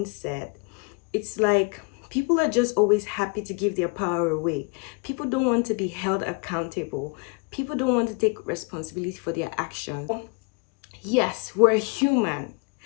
it's like people are just always happy to give their power away. People don't want to be held accountable. People don't want to take responsibility for their actions. Yes, we're human.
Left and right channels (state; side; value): quieter; right; 31.9 dB